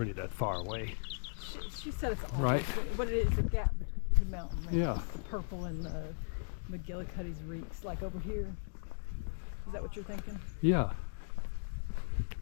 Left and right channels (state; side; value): silent; right; digital silence